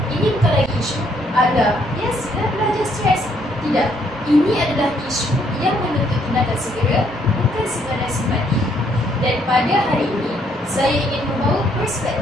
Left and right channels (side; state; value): both; normal; correlation 0.69